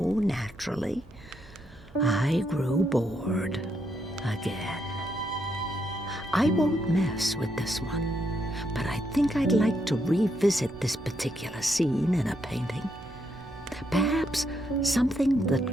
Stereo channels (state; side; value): normal; both; correlation 0.78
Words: naturally, I grew bored again. I won't mess with this one, but I think I'd like to revisit this particular scene in a painting. Perhaps something that